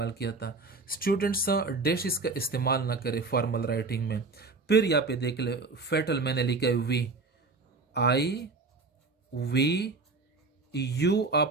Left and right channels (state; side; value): quieter; left; 3.8 dB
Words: किया था। स्टूडेंट्स डैशिज का इस्तेमाल ना करें फॉर्मल राइटिंग में। फिर यहाँ पे देख ले, फेटल मैंने लिखा है वी, आई, वी, यू,